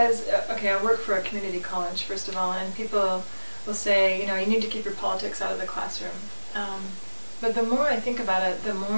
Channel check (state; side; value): inverted; both; correlation -1.00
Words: okay, I work for a community college, first of all, and people will say, you need to keep your politics out of the classroom. But the more I think about it, the